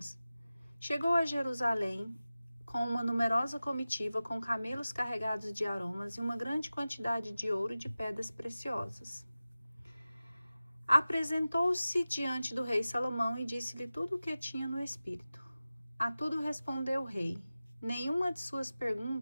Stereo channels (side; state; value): both; inverted; correlation -0.96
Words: Chegou a Jerusalém com uma numerosa comitiva com camelos carregados de aromas e uma grande quantidade de ouro e de pedras preciosas. Apresentou-se diante do rei Salomão e disse-lhe tudo o que tinha no espírito. A tudo respondeu o rei. Nenhuma de suas